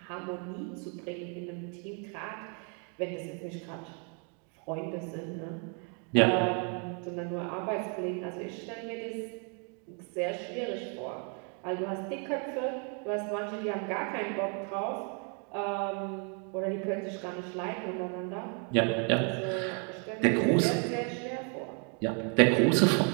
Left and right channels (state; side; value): quieter; left; 39.3 dB